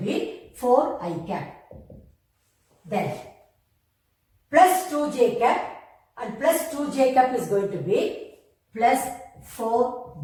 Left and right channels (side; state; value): both; identical; correlation 1.00